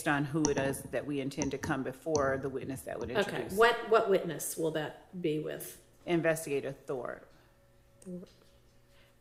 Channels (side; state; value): both; identical; correlation 1.00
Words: on who it is that we intend to come before the witness that would Okay. introduce. What witness will that be with? Investigator Thor.